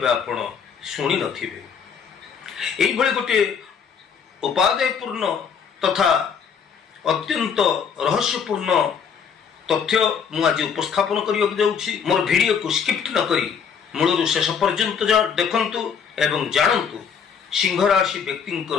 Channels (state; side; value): quieter; right; 6.9 dB